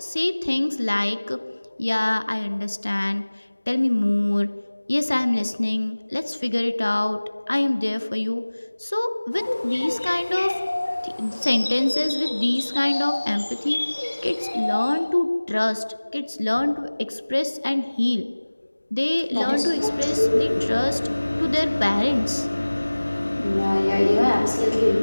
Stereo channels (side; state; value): both; inverted; correlation -1.00